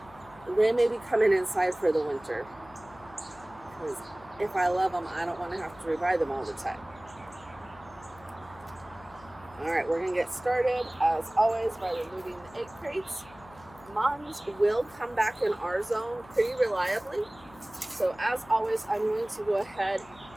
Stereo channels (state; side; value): noise; left; hum, 23 dB below the sound